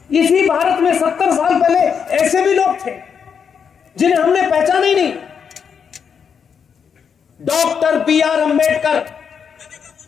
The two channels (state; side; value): quieter; right; 6.9 dB